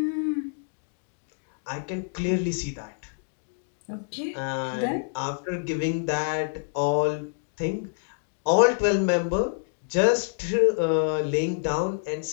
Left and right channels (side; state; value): right; silent; digital silence